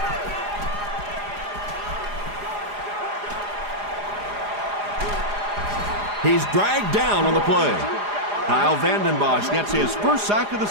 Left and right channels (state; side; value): late; left; 4.9 ms